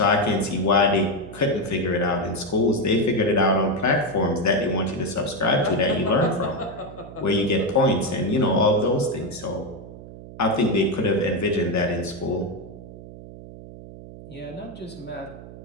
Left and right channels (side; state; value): right; noise; hum, 15 dB below the sound